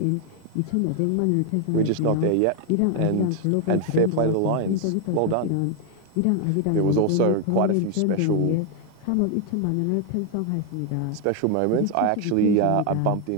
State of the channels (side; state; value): both; different; correlation 0.01